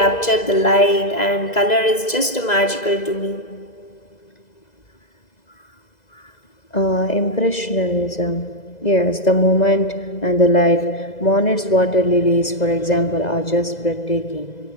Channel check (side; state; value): right; late; 2.0 ms